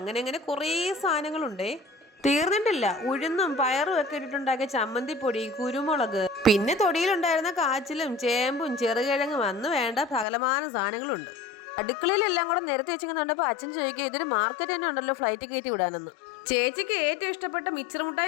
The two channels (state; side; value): drops out; right; at 10.2 s